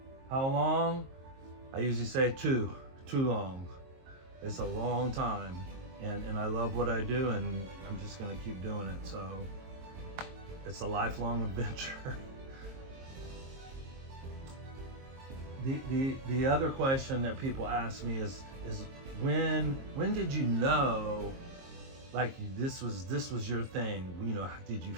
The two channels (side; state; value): left; late; 22 ms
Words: how long? I usually say too long. It's a long time, and I love what I do, and I'm just gonna keep doing it. So it's a lifelong adventure. The other question that people ask me is when did you know, like, this was your thing? Did you